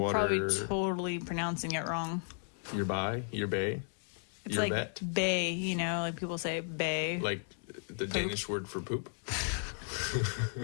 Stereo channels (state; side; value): silent; right; 55 dB below the other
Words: Probably totally pronouncing it wrong. Yerba. It's Yerbat? like bay, you know, like people say bay. Like the Poop. Danish word for poop.